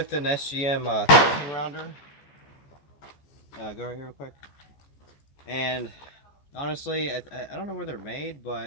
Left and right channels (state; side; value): late; right; 15 ms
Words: an SGM 13 rounder. Go right here real quick. And honestly, I don't know where they're made,